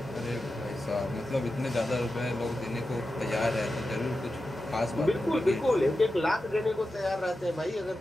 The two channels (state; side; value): normal; both; correlation 0.91